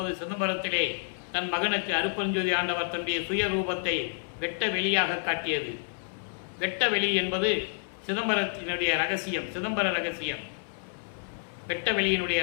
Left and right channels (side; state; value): right; silent; 58 dB below the other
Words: சிதம்பரத்திலே தன் மகனுக்கு அருட்பெருஞ்சோதி ஆண்டவர் தன்னுடைய சுய ரூபத்தை வெட்ட வெளியாக காட்டியது. வெட்ட வெளி என்பது சிதம்பரத்தினுடைய ரகசியம், சிதம்பர ரகசியம், வெட்ட வெளியினுடைய